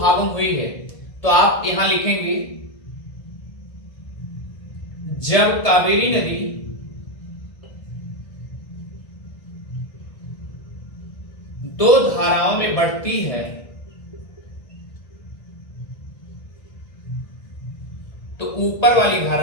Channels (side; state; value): right; late; 1.8 ms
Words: में हुई है तो आप यहां लिखेंगे, जब कावेरी नदी दो धाराओं में बढ़ती है तो ऊपर वाली